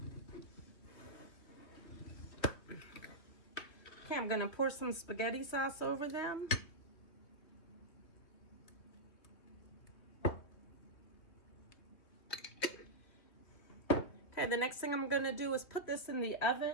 Okay, I'm going to pour some spaghetti sauce over them. Okay, the next thing I'm going to do is put this in the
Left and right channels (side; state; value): right; late; 3.0 ms